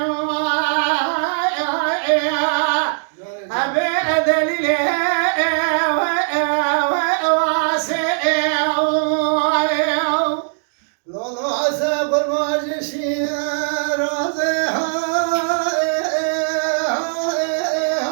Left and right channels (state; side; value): silent; left; digital silence